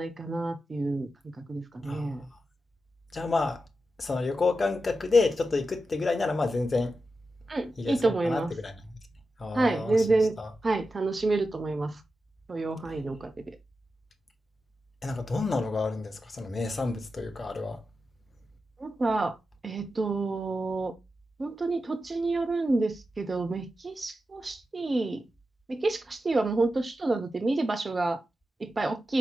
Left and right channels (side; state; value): both; normal; correlation 0.90